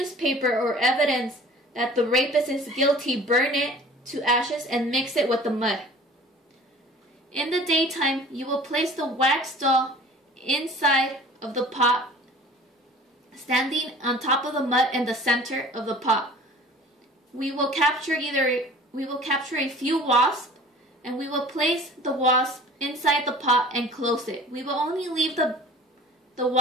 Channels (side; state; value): both; normal; correlation 0.45